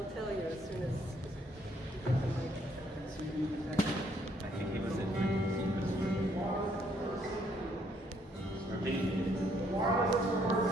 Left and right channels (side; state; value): both; normal; correlation 0.68